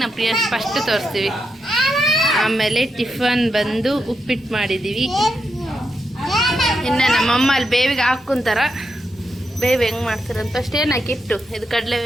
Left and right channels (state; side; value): normal; both; correlation 0.84